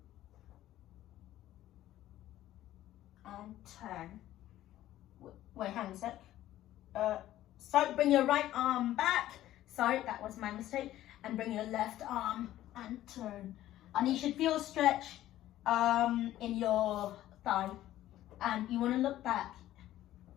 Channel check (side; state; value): right; quieter; 13.8 dB